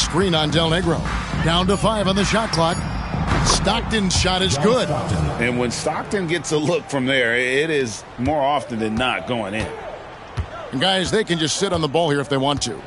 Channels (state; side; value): identical; both; correlation 1.00